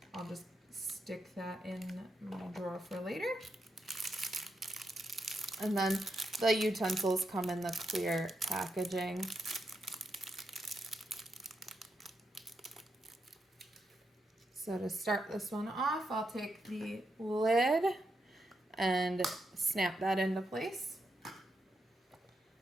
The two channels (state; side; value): normal; both; correlation 0.83